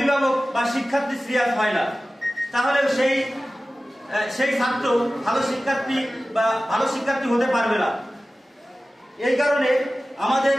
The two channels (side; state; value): both; normal; correlation 0.96